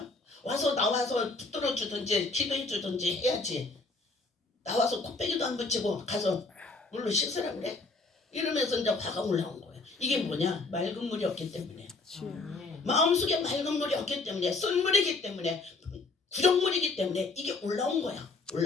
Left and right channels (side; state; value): right; quieter; 3.6 dB